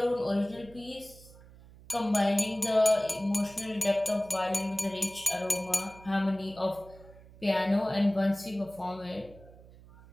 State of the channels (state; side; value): noise; right; hum, 21 dB below the sound